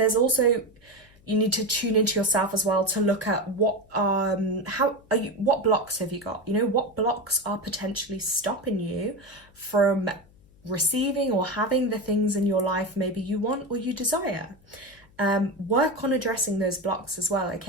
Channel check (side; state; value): left; noise; hum, 28 dB below the sound